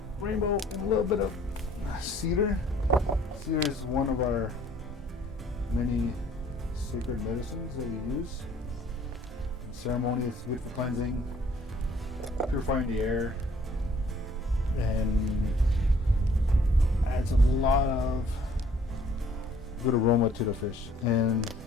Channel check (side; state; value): both; normal; correlation 0.58